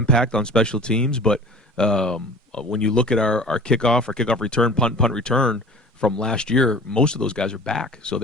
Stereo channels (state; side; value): normal; both; correlation 0.41